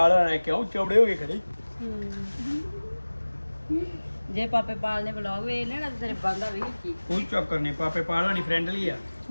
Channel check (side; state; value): both; inverted; correlation -1.00